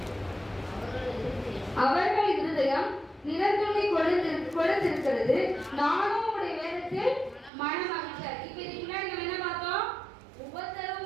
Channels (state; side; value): drops out; left; at 7.5 s